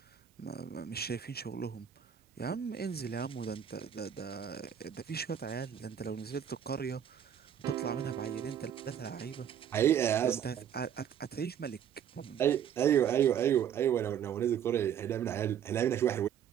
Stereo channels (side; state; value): left; quieter; 9.0 dB